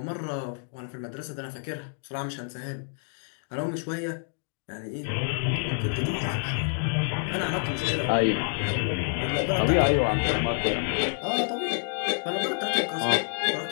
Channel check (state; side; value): silent; right; 57 dB below the other